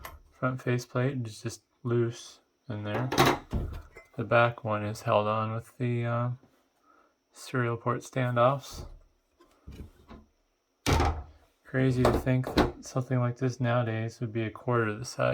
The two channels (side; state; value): both; identical; correlation 1.00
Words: Front faceplate is just loose in there. The back one is held on with the serial port standoffs. Crazy to think that something like this nowadays would be a quarter of the